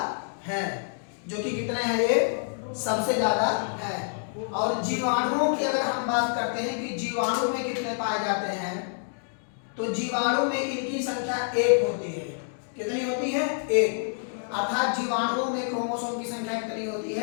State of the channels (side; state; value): right; silent; digital silence